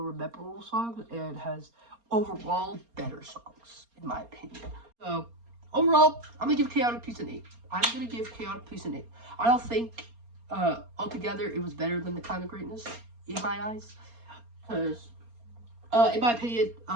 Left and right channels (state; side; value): late; left; 4.3 ms